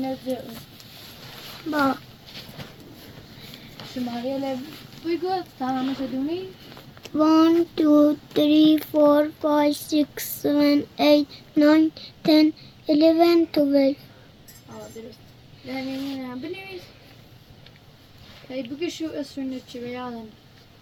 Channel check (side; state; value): both; identical; correlation 1.00